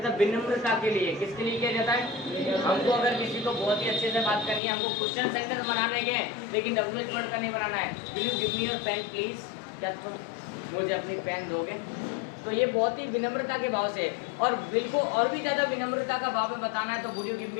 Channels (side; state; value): right; drops out; at 4.6 s